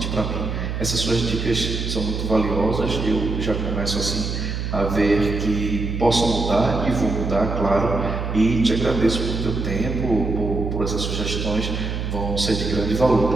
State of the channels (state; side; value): noise; right; hum, 3 dB below the sound